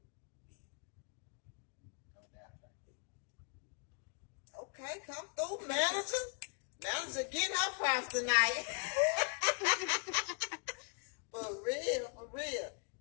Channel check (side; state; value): right; quieter; 38.0 dB